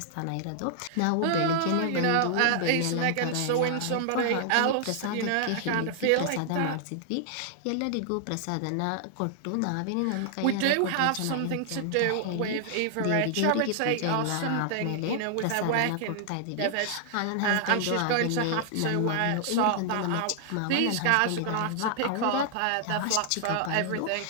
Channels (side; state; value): both; different; correlation -0.01